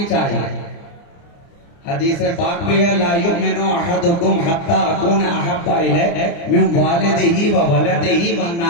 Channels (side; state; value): right; late; 29 ms